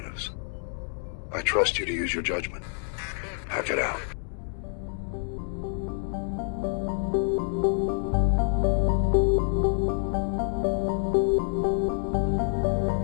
I trust you to use your judgment. Hack it out.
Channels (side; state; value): right; silent; 60 dB below the other